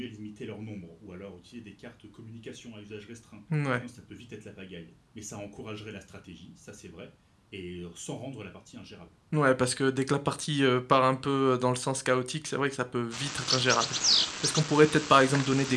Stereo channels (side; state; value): both; identical; correlation 1.00